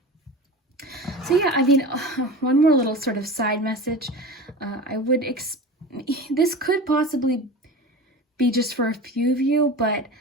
So yeah, I mean, one more little sort of side message. This could possibly be just for a few of you, but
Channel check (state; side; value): normal; both; correlation 0.31